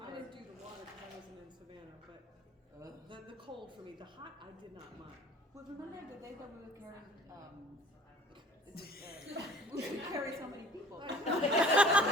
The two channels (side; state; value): both; normal; correlation 0.47